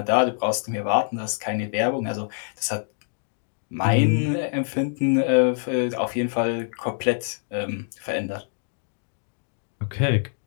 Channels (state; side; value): silent; right; digital silence